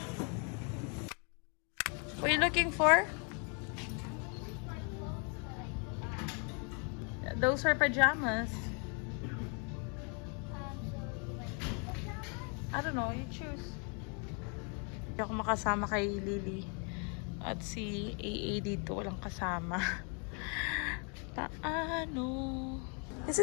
What are you looking for? Those are pajamas. I don't know, you choose. Hindi ako makasama kay Lily. At si AA dito, walang kasama. Paano? This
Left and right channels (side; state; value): right; quieter; 37.6 dB